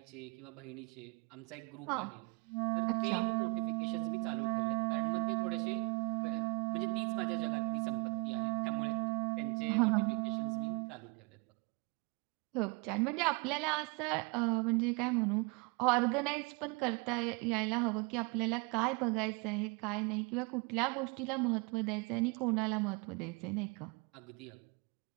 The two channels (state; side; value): quieter; left; 31.1 dB